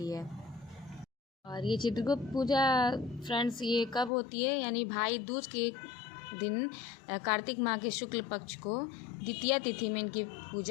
है। और ये चित्रगुप्त पूजा फ्रेंड्स ये कब होती है, यानी भाई दूज के दिन कार्तिक माह के शुक्ल पक्ष को द्वितीया तिथि में इनकी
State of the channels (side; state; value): right; drops out; at 4.1 s